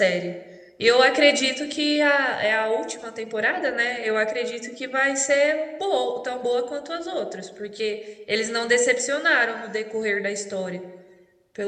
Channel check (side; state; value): both; identical; correlation 1.00